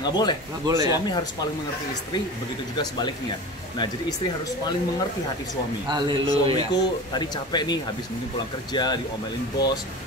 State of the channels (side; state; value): both; normal; correlation 0.33